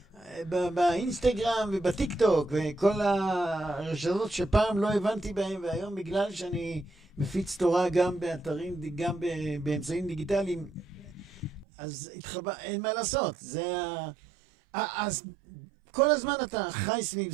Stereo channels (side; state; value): left; drops out; at 11.7 s